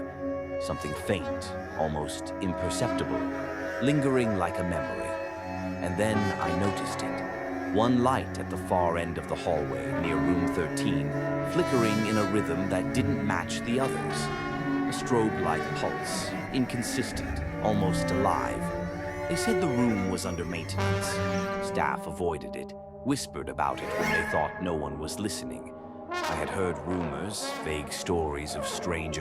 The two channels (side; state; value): both; identical; correlation 1.00